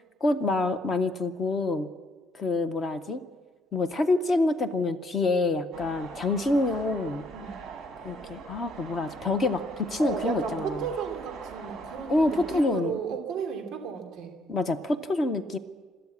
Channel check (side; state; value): both; normal; correlation 0.67